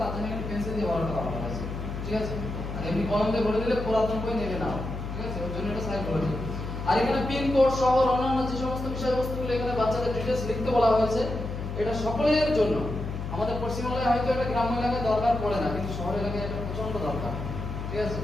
তার জন্য একটা পেন্সিল দিয়ে বড়টা করা হয়েছে, ঠিক আছে? আর এমনি কলম দিয়ে ভরে দিলে পুরাতন বই নেবে না। ঠিক আছে, ওর জন্য এটা সাইকোলজি। আর এখানে পিন কোড সহ অন্যান্য যে সমস্ত বিষয়বস্তুগুলো এখানে বাচ্চাদের ডিটেইলস লিখতে বলা হয়েছে, এটা সকলের জন্য। আমাদের পশ্চিমবাংলায় হয়তো এটা গ্রাম্য এলাকায় দরকার পড়ে না, কিন্তু শহর এলাকায় এটা প্রচন্ড দরকার। ঠিক আছে,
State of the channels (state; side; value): noise; left; hum, 6 dB below the sound